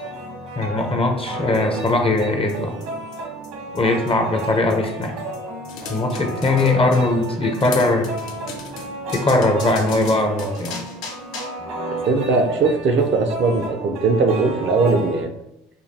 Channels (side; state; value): both; normal; correlation 0.49